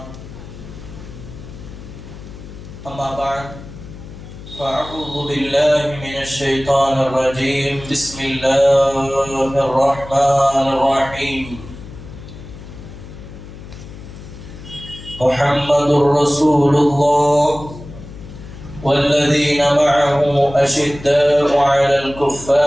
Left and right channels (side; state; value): left; noise; hum, 15 dB below the sound